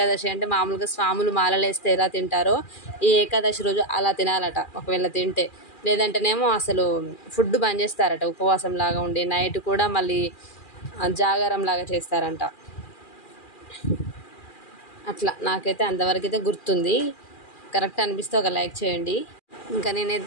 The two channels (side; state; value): right; late; 2.4 ms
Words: అంటే మామూలుగా స్వాములు మాలలేస్తే ఎలా తింటారో ఈ ఏకాదశి రోజు అలా తినాలట. ఒకవేళ తింటే, లేదంటేనేమో అసలు ఫుడ్ బంద్ చేస్తారట. ఉపవాసం లాగా ఉండి నైట్ కూడా మళ్ళీ జాగారం లాగా చేస్తారంట. అట్లా నాకైతే అంతవరకు అయితే గుర్తుంది. కరెక్ట్ అనిపిస్తే ఒక లైక్ చేయండి. ఇంకా